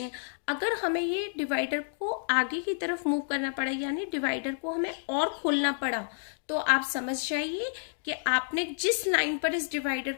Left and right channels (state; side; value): silent; right; digital silence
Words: अगर हमें ये डिवाइडर को आगे की तरफ मूव करना पड़ा, यानी डिवाइडर को हमें और खोलना पड़ा, तो आप समझ जाइए कि आपने जिस लाइन पर इस डिवाइडर